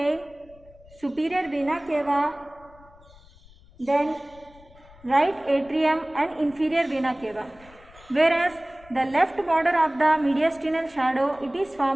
superior vena cava, then right atrium and inferior vena cava. Whereas the left border of the mediastinal shadow, it is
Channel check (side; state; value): left; noise; rumble, 25 dB below the sound